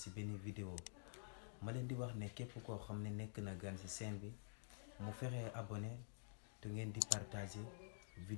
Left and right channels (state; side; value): silent; right; digital silence